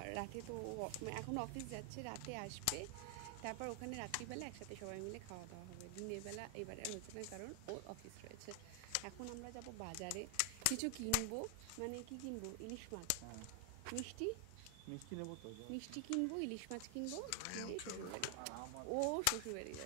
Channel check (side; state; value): both; different; correlation 0.00